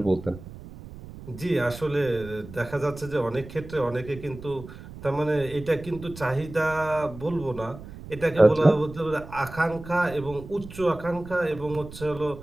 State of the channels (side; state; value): right; noise; rumble, 15 dB below the sound